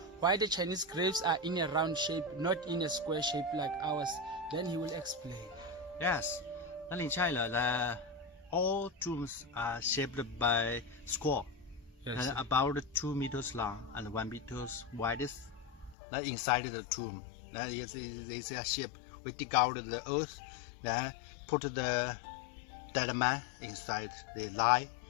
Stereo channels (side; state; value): right; drops out; at 16.0 s